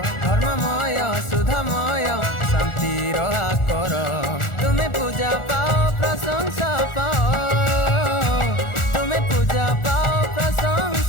धर्ममय सुधामय शांतिर आकर, तुम्हें पूजा पाओ प्रशंसा पाओ, तुम्हें पूजा पाओ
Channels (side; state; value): right; late; 1.4 ms